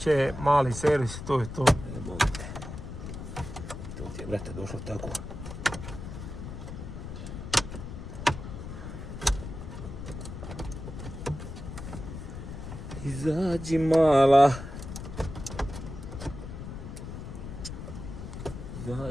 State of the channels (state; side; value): noise; left; rumble, 9 dB below the sound